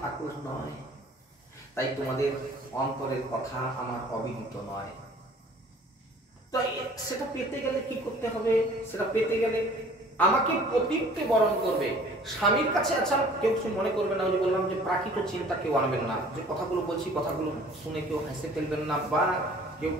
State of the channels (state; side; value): normal; both; correlation 0.51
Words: নয়, তাই তোমাদের অন্তরের কথা আমার অবিদিত নয়। তো সেটা পেতে গেলে কি করতে হবে? সেটা পেতে গেলে আমাকে পতিত্বে বরণ করবে স্বামীর কাছে। আচ্ছা কেউ কিছু মনে করবে না, ওই যে বললাম যে প্রাকৃত চিন্তা কেউ আনবেন না, যে কথাগুলো বলছি কথাগুলো শুনে কেউ হেসে ফেলবেন না বা কেউ